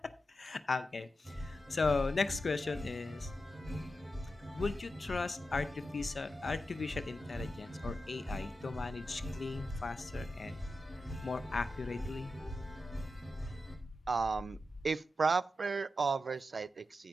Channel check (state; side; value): normal; both; correlation 0.89